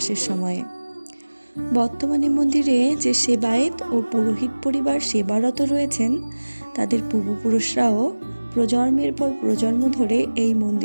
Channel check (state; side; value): inverted; both; correlation -1.00